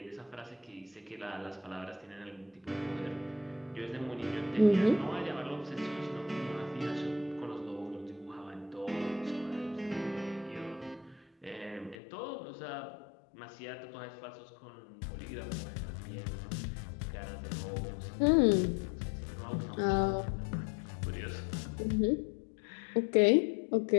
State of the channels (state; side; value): drops out; right; at 12.0 s